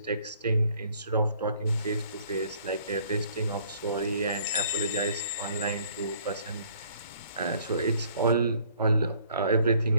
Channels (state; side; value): inverted; both; correlation -0.59